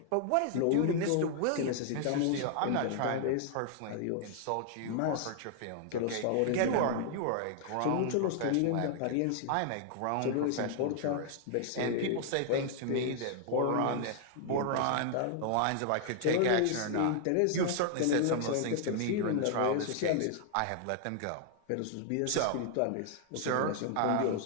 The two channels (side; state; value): both; different; correlation 0.00